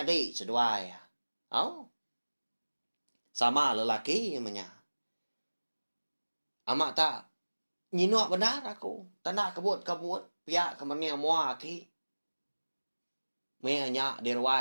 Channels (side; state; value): both; inverted; correlation -1.00